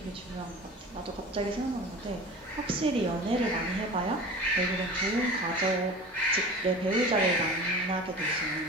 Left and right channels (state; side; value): normal; both; correlation 0.36